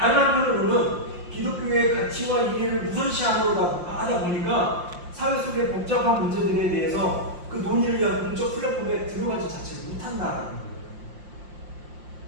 한편으로는 기독교의 가치와 이해를 우선시하려고 하다 보니까 사회 속의 복잡한 문제들에 대해서 그 논의를 위한 공적 플랫폼에 들어가지 자체를 못한다라는 거예요.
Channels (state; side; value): late; left; 5.7 ms